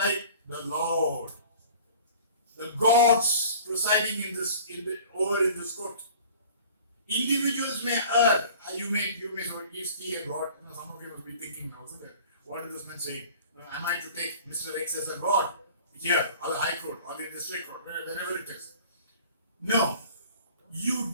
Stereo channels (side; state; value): both; inverted; correlation -0.45